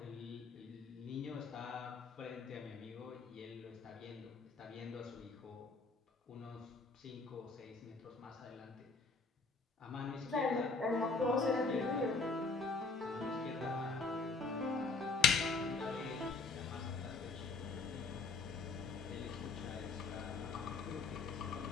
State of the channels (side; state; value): right; quieter; 4.3 dB